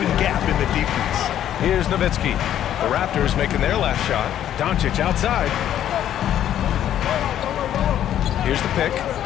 gap in the defense. Here's Nowitzki. The Raptors making their last shot. Doncic outside. Here's the pick.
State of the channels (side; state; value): right; quieter; 11.0 dB